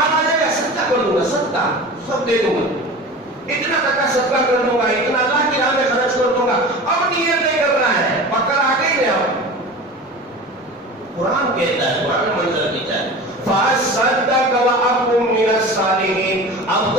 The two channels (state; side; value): normal; both; correlation 0.35